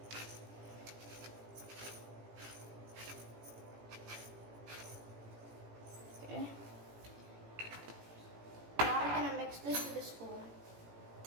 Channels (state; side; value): late; left; 18 ms